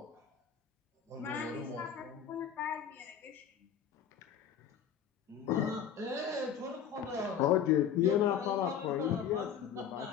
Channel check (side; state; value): right; quieter; 8.3 dB